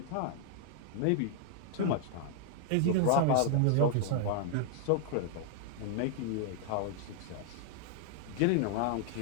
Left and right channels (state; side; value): different; both; correlation 0.00